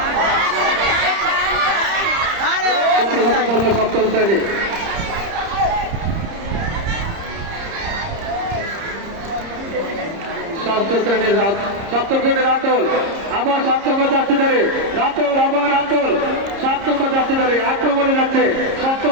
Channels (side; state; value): left; late; 30 ms